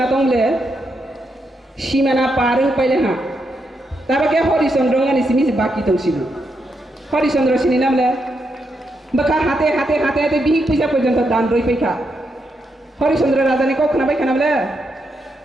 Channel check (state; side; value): normal; both; correlation 0.81